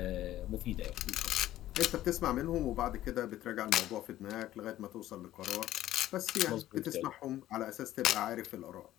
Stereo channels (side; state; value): right; quieter; 14.0 dB